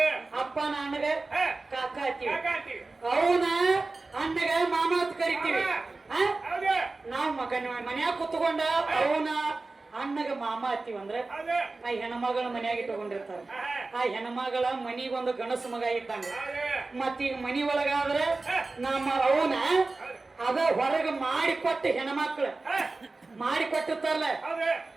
ಅಪ್ಪನ ಅಣ್ಣಗ ಕಾಕ ಅತ್ತೀವಿ ಅವನ ಅಣ್ಣಗ ಮಾಮ ಅಂತ ಕರಿತೀವಿ ನಾವ್ ಮನ್ಯಾಗ ಕುತ್ಕೊಂಡ ಅವನ ಅಣ್ಣಗ ಮಾಮ ಅತ್ತೀವಿ ಅಂದ್ರೆ ಆ ಹೆಣ್ಮಗಳ ಮನ್ಯಾಗ ಇಟ್ಕೊಂಡಿರ್ತಾರ ಆ ಹೆಣ್ಮಗಳ ಮನಿಗೊಂದು ಗಣಸ ಮಗ ಇದ್ದಂಗ ಮತ್ತೀಗ ಮನಿ ಒಳಗಾದ್ರೆ ನಮ್ಮ ಅವನ ಅದ ಹೊರಗ ಮಾಡಿಕೊಟ್ಟ ಹೆಣ್ಮಕ್ಳು ಮಾಡಿಕೊಟ್ಟಿರ್ತಾರಲ್ಲ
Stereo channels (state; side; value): quieter; left; 3.5 dB